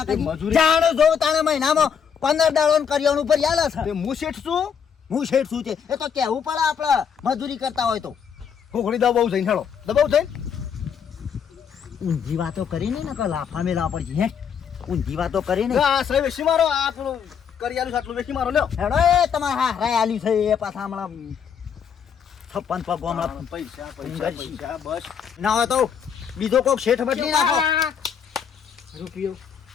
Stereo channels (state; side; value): quieter; right; 7.4 dB